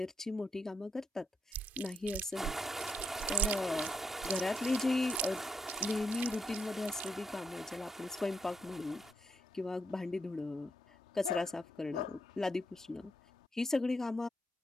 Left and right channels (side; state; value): both; normal; correlation 0.79